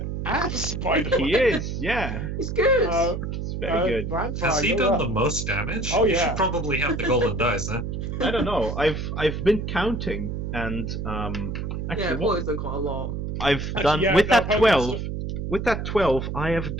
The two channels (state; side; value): noise; right; hum, 4 dB below the sound